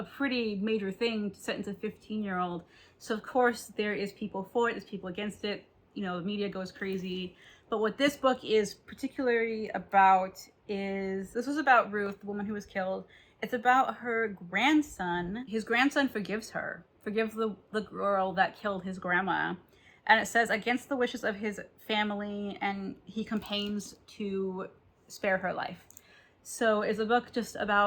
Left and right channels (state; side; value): identical; both; correlation 1.00